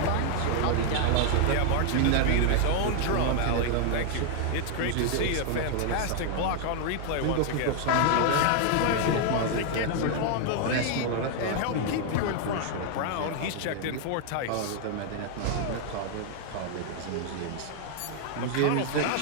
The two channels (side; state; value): both; different; correlation 0.00